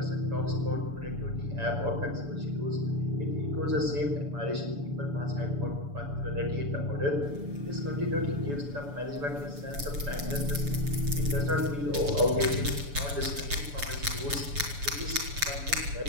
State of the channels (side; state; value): left; late; 7.0 ms